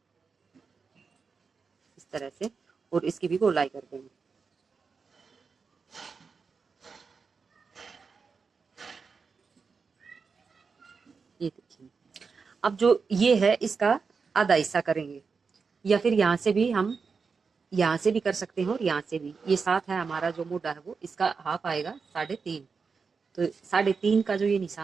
इस तरह से, और इसकी भी गोलाई कर देंगे। ये देखिए, अब जो ये है इसका आधा हिस्सा करेंगे, या फिर यहाँ से भी हम यहाँ से भी कर सकते हैं और यहाँ से भी। ये 7 है हमारा जो मोटा है वो, इसका हाफ आएगा 3.5। तो 3.5 का जो ये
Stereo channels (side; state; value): left; quieter; 5.1 dB